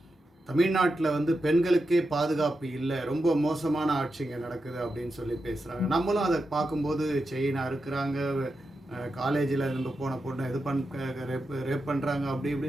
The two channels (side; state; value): both; normal; correlation 0.88